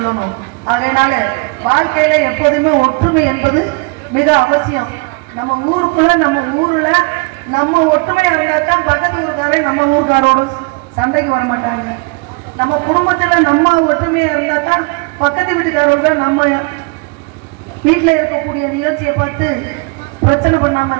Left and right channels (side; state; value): left; quieter; 29.8 dB